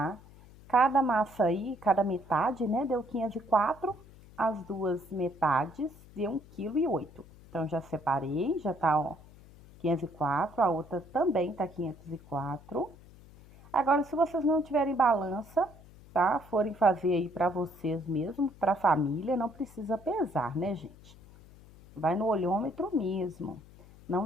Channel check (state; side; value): noise; left; hum, 22 dB below the sound